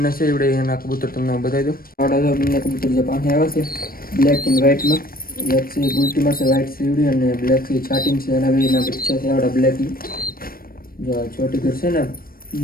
છે એવડે એના કબૂતર તમને બતાવી દઉં આવડા જો બંને કબૂતર જે પાસે આવ્યા છે બ્લેક એન્ડ વ્હાઇટમાં બ્લેક છે ગુલટીમાં છે વ્હાઇટ સીવડી અને બ્લેક છે ચાટિંગ છે એના બેના બચ્ચા છે આવડા બ્લેકની જો છોટી ઘર છે ને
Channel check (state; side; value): late; right; 0.43 ms